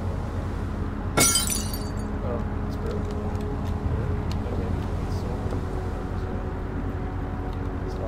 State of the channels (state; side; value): identical; both; correlation 1.00